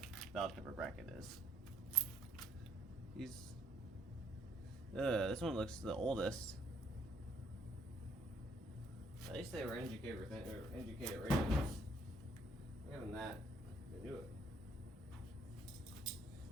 valve cover bracket is. This one looks the oldest. At least they were indicator radios. Given that, they knew it.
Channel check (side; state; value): both; normal; correlation 0.65